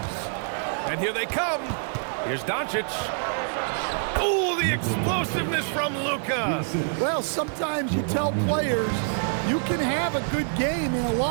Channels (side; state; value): left; silent; digital silence